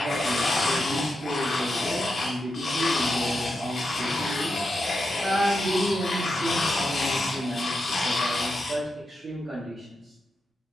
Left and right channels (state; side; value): normal; both; correlation 0.86